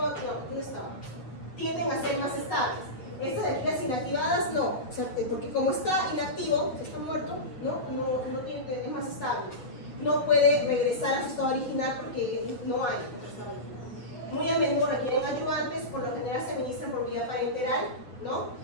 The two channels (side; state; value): right; late; 8.2 ms